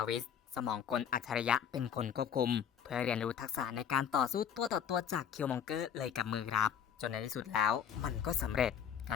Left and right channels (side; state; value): right; quieter; 8.5 dB